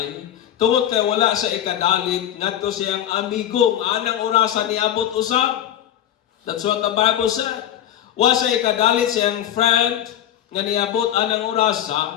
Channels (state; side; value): quieter; right; 11.1 dB